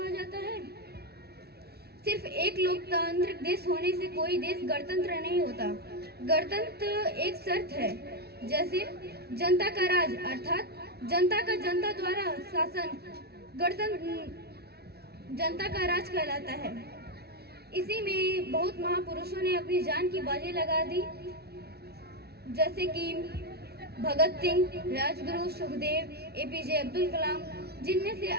जाता है? सिर्फ एक लोकतांत्रिक देश होने से कोई देश गणतंत्र नहीं होता। गणतंत्र एक शर्त है, जैसे जनता का राज अर्थात जनता का जनता द्वारा शासन गणतंत्र जनता का राज कहलाता है। इसी में बहुत महापुरुषों ने अपनी जान की बाजी लगा दी, जैसे कि भगत सिंह, राजगुरु, सुखदेव, एपीजे अब्दुल कलाम, जिनमें से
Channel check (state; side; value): late; left; 0.47 ms